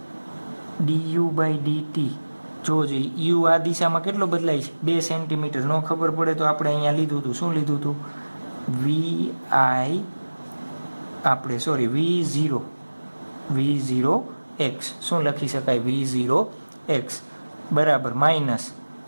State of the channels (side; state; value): both; inverted; correlation -1.00